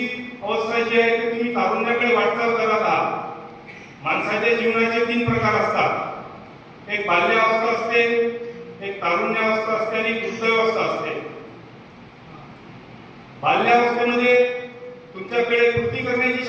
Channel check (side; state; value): both; identical; correlation 1.00